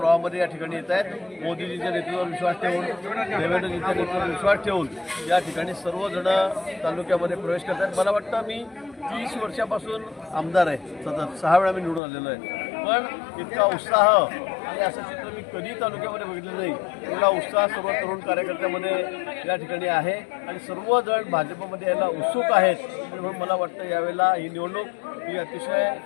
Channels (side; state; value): right; drops out; at 12.0 s